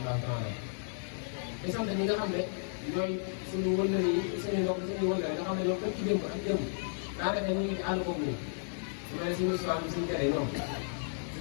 taala di sant ñi nga xam ne ñooy suñu wëllëre yi suñu mbokk suñu wëllëre nga xam ne ñoom képp ci démb ak démb daanaka ñu ngi ci àll boobu nii su ma nee suñu histoire bi suñu tere ñoom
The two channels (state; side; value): silent; right; digital silence